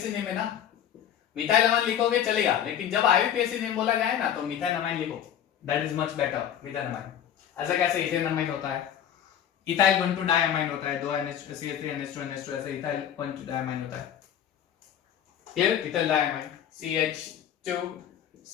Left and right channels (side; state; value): right; quieter; 9.7 dB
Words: नेम है ना, मिथाइल अमाइन लिखोगे चलेगा, लेकिन जब IUPAC नेम बोला गया है ना, तो मिथाइल अमाइन लिखो, that is much better, methyl amine. ऐसा कैसे इथेन अमाइन होता है, इथाइल 1,2 डायमाइन होता है, 2 CH3NH2NH2, ऐसे इथाइल 1,2 डायमाइन होता है, clear, ethyl diamine, CH2